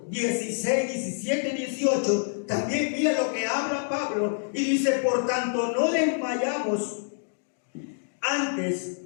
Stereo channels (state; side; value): silent; right; digital silence